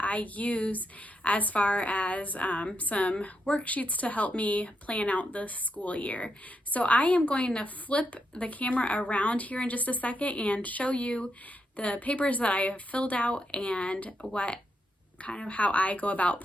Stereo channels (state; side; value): normal; both; correlation 0.82